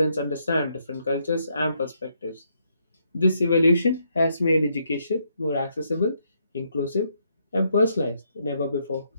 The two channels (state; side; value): inverted; both; correlation -0.75